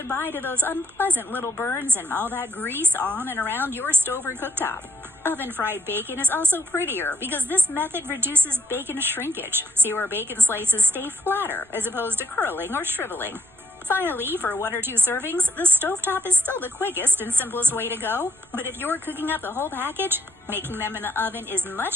to those unpleasant little burns and all that grease on and around your stove or cooktop. Oven-fried bacon is also prettier because this method reduces bacon shrinkage, so your bacon slices stay flatter as opposed to curling or shriveling. Finally, for 1 or 2 servings, the stovetop is still the quickest and simplest way to go, but if you're cooking up the whole package, making them in the oven is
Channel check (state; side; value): noise; right; rumble, 30 dB below the sound